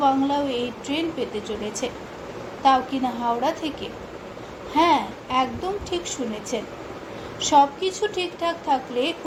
বাংলাও এই ট্রেন পেতে চলেছে, তাও কিনা হাওড়া থেকে। হ্যাঁ, একদম ঠিক শুনেছেন। সব কিছু ঠিকঠাক থাকলে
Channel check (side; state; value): both; identical; correlation 1.00